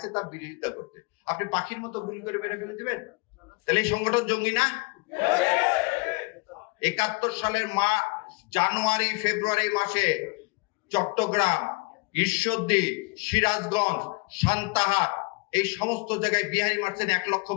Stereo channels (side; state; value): right; quieter; 28.1 dB